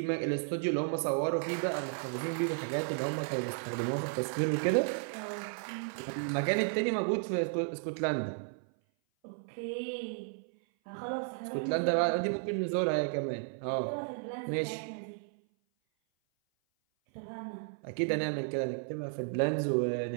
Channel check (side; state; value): left; silent; 55 dB below the other